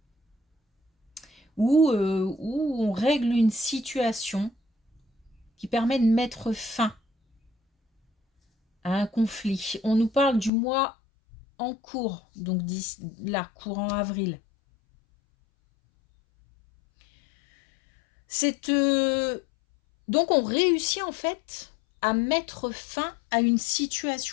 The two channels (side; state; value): right; drops out; at 10.5 s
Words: ou on règle une situation qui permet de mettre fin à un conflit. On nous parle du mois en cours, donc là, courant avril. Donc on réussit en fait à mettre fin à une